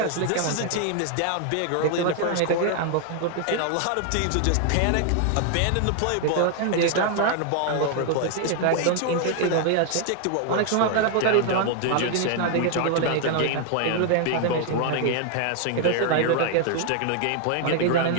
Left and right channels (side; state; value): both; different; correlation 0.00